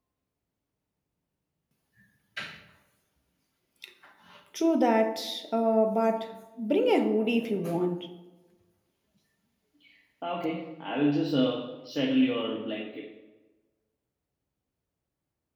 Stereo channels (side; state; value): both; identical; correlation 1.00